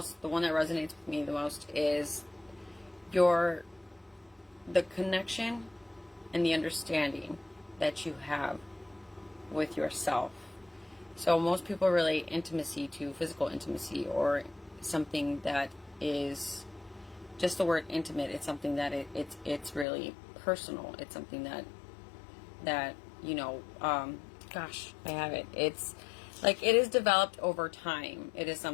the one that resonates with me the most is the connection and the understanding that you have with yourself. So most people relate intimacy to physical intimacy, or something that is just the word intimate. It's something that it's really personal. It's something that gosh, I have it. It's like it is developed over time. It is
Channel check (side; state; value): right; drops out; at 19.9 s